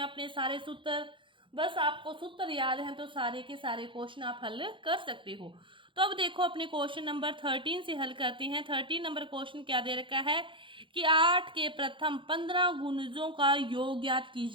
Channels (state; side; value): late; left; 0.24 ms